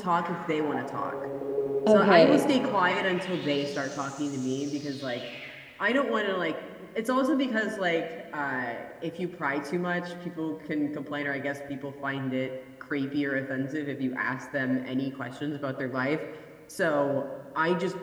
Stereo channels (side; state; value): both; identical; correlation 1.00